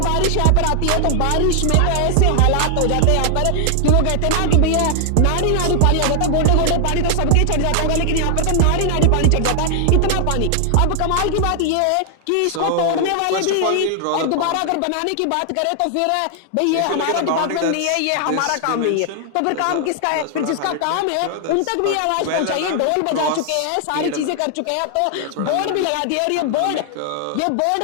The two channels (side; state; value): both; different; correlation 0.00